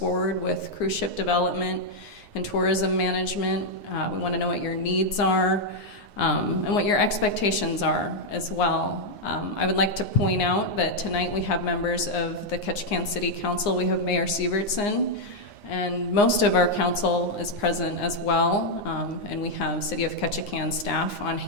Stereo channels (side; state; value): right; late; 9.7 ms